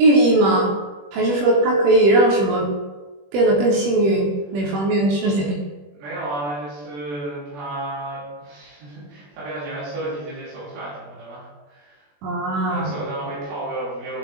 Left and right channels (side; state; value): left; late; 21 ms